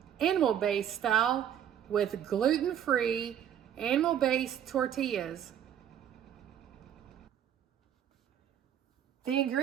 animal-based style, with gluten-free, animal-based tortillas. The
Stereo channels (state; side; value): quieter; left; 9.7 dB